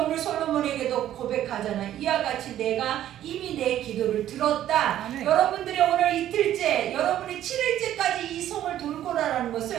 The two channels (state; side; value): quieter; left; 12.1 dB